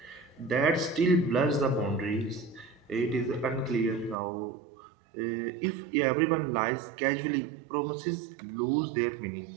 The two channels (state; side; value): drops out; left; at 4.2 s